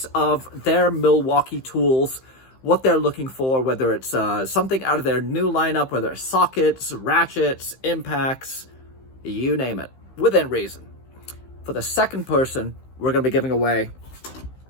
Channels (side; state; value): right; late; 15 ms